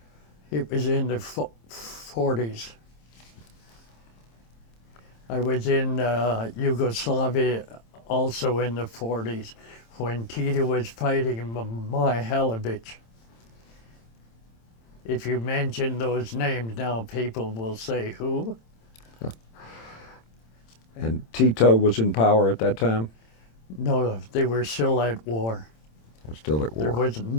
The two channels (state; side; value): late; right; 27 ms